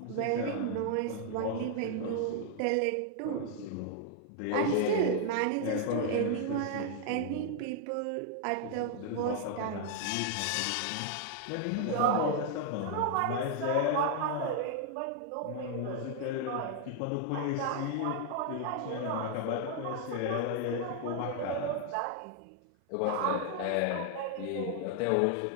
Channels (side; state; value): both; different; correlation 0.00